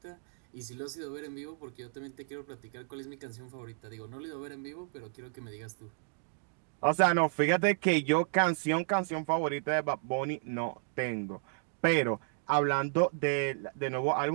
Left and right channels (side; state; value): left; silent; digital silence